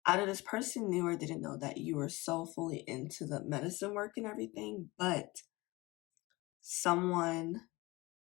either this person knew or didn't know that you were so fully into the medicine work and everything, but someone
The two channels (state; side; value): quieter; right; 22.2 dB